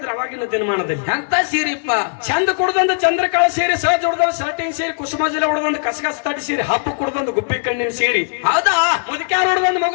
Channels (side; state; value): right; silent; 58 dB below the other